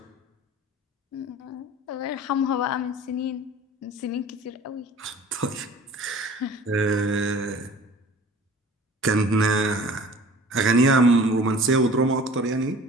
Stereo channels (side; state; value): both; normal; correlation 0.46